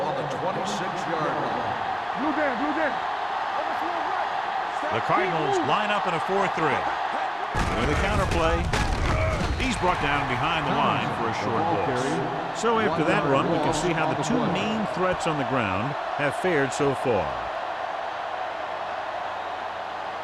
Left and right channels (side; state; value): both; identical; correlation 1.00